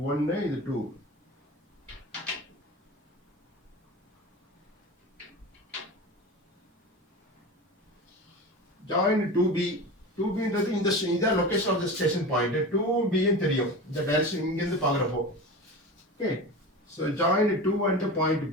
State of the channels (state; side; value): normal; both; correlation 0.29